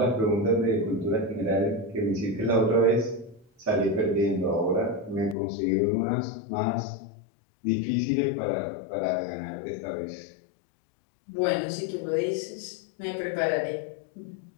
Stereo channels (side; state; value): right; drops out; at 5.4 s